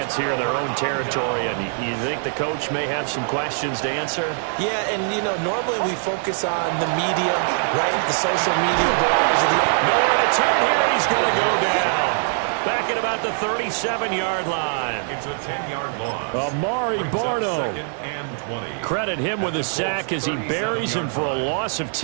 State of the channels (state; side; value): silent; left; 59 dB below the other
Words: here in their own territory. And you think the coach may have some questions to answer? Yeah, and, you know, normally we focus on the media, right? The social media barrage. Nowhere to turn here, and he's going to go down. Back at about the 37-yard line. It's a 10-yard loss. Amari Barno. 2nd and 20. Credit him with a sack as he buries him for a loss of